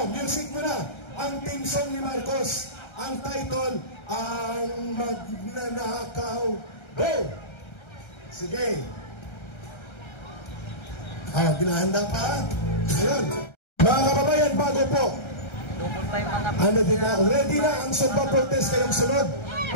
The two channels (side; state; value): right; late; 1.3 ms